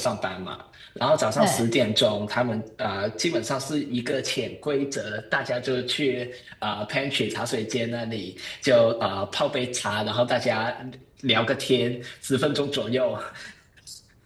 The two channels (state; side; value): identical; both; correlation 1.00